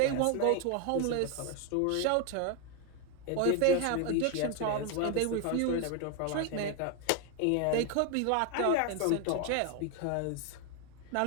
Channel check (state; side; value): different; both; correlation 0.01